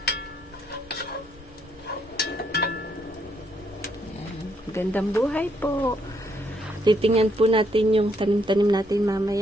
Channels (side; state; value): both; normal; correlation 0.73